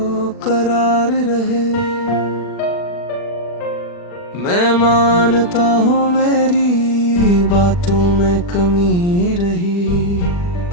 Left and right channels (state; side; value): late; right; 40 ms